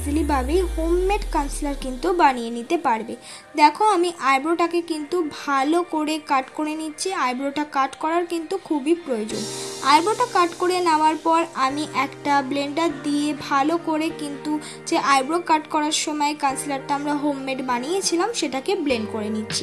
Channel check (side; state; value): both; identical; correlation 1.00